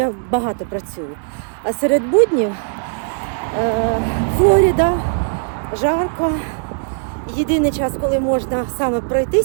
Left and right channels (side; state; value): left; silent; digital silence